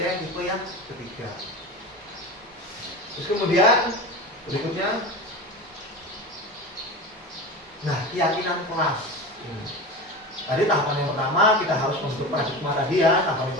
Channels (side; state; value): both; normal; correlation 0.29